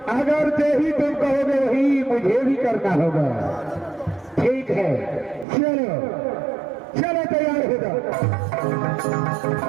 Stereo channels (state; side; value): drops out; left; at 5.5 s